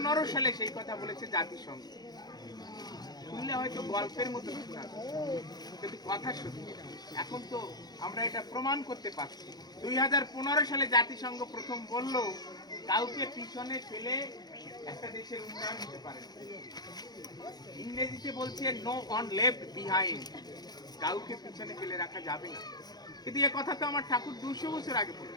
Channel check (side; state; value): right; late; 0.19 ms